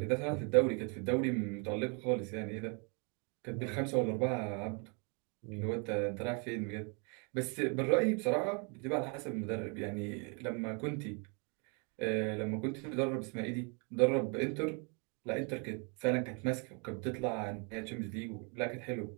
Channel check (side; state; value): left; quieter; 35.2 dB